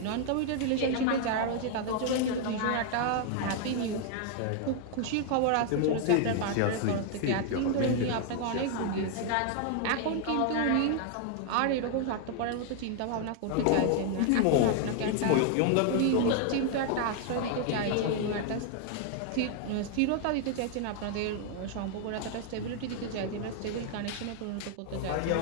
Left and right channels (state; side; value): different; both; correlation 0.00